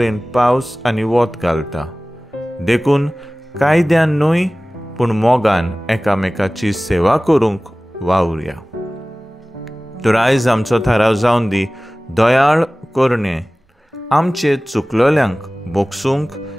पावस आनी वत घालता. देखून कायद्यान न्हय पूण मोगान एकामेकाची सेवा करूंक वावुरया. तर आयज आमचो थाराव जावन दी, दयाळ करणे, आमचे चुकलोल्यांक बोगसूंक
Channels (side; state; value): both; normal; correlation 0.98